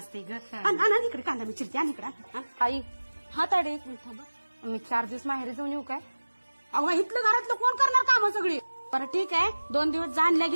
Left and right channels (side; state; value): both; inverted; correlation -1.00